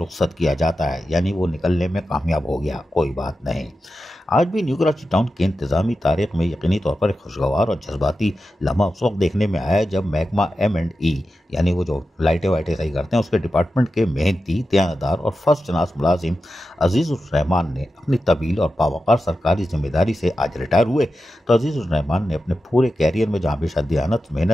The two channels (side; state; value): both; normal; correlation 0.91